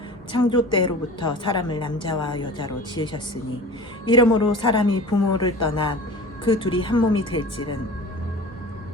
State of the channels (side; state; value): both; normal; correlation 0.38